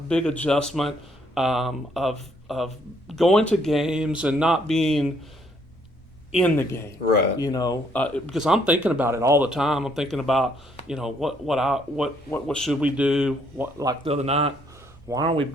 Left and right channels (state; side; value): normal; both; correlation 0.68